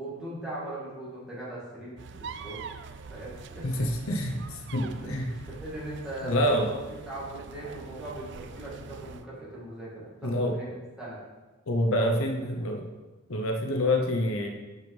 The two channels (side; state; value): both; normal; correlation 0.36